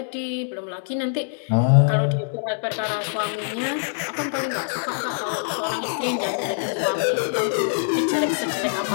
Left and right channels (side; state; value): right; silent; digital silence